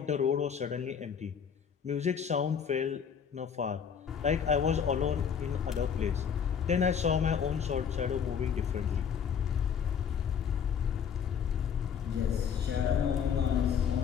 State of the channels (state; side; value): quieter; right; 7.4 dB